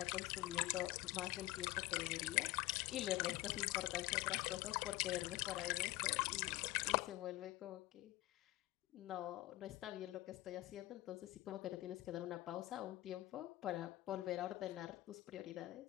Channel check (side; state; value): right; quieter; 17.6 dB